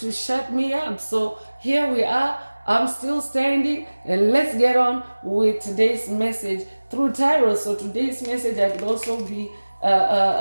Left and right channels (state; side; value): inverted; both; correlation -1.00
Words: shut me up. So here we are. I'm still standing, and let's get on with today's message through tarot. So today's message, I could also